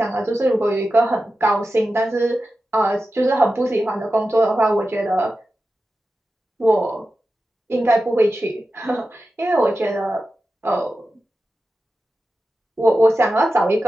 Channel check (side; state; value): both; normal; correlation 0.92